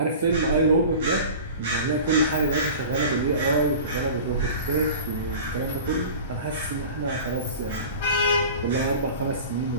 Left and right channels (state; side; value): inverted; both; correlation -0.38